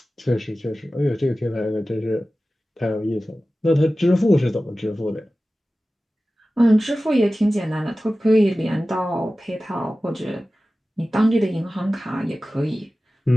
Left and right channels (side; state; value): both; normal; correlation 0.96